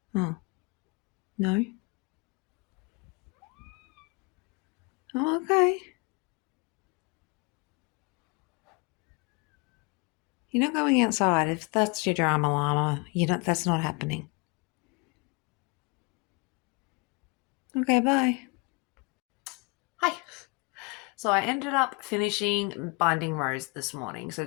Oh. No? Oh, okay. You're not going outside. If that's your drama llama, that's not happening. Okay, bye. Hi. So I ended up finishing Binding Rose this morning. So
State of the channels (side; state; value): right; quieter; 29.3 dB